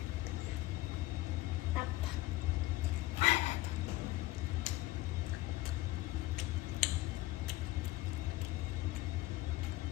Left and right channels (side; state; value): right; quieter; 17.9 dB